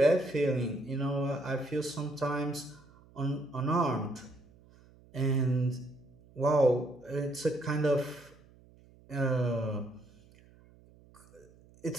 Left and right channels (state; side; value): noise; right; hum, 26 dB below the sound